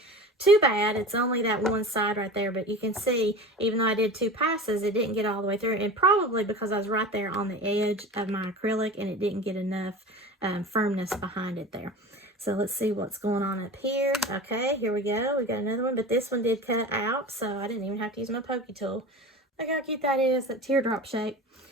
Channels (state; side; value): normal; both; correlation 0.34